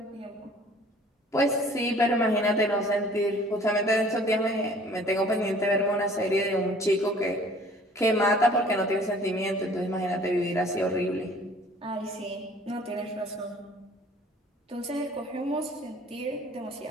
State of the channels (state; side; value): normal; both; correlation 0.52